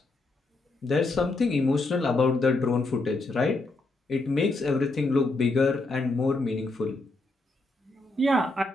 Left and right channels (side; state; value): right; quieter; 3.1 dB